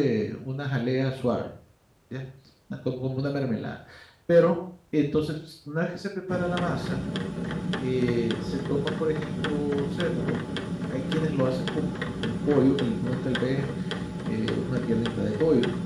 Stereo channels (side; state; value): both; identical; correlation 1.00